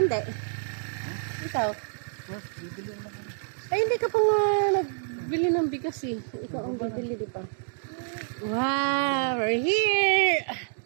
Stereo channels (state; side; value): silent; left; digital silence